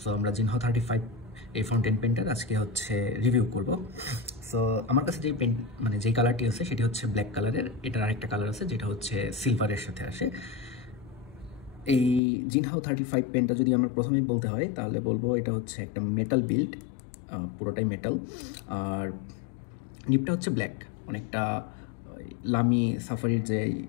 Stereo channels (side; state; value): right; drops out; at 12.2 s